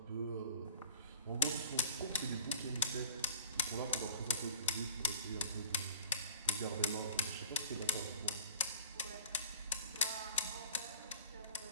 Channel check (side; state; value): both; inverted; correlation -0.45